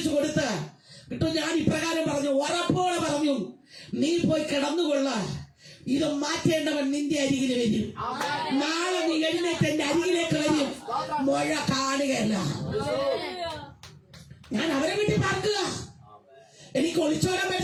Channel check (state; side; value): identical; both; correlation 1.00